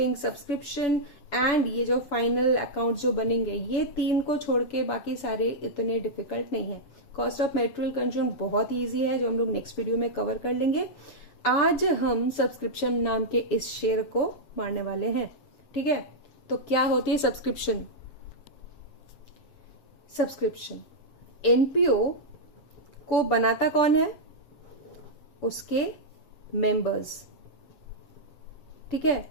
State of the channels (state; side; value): late; right; 7.0 ms